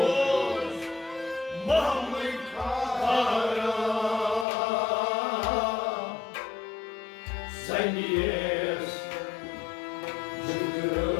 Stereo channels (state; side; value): drops out; right; at 4.5 s